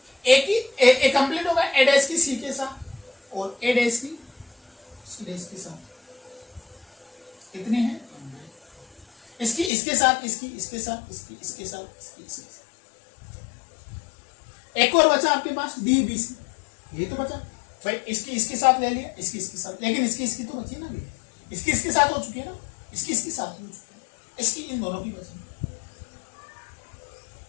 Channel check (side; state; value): right; drops out; at 9.7 s